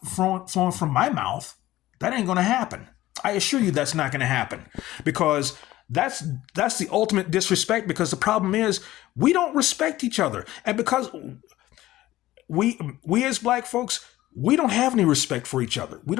from my mouth. That ain't going to happen. I assure you that's not going to happen, because that's the ultimate disrespect. Because the problem is we don't respect each other, and because we as black folks, we don't have any respect for each other. We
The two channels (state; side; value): quieter; right; 15.8 dB